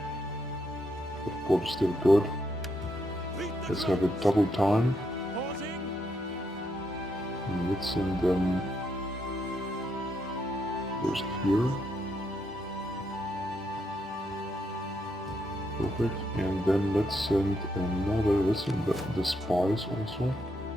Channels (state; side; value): normal; both; correlation 0.78